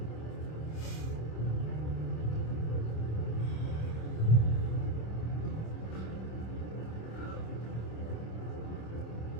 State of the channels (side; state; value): right; late; 26 ms